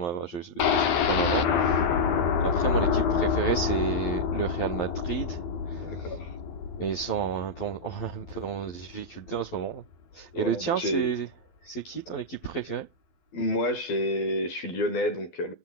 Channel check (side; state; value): right; late; 12 ms